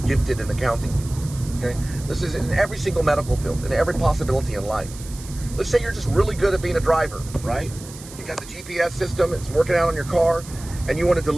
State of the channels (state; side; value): noise; right; hiss, 16 dB below the sound